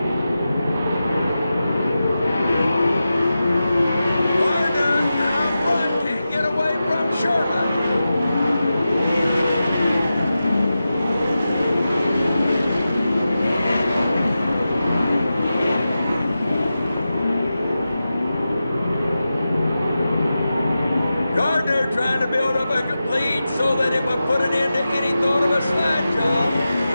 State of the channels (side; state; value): both; inverted; correlation -0.92